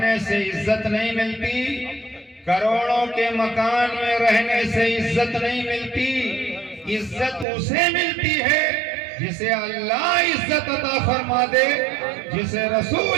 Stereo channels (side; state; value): left; drops out; at 7.5 s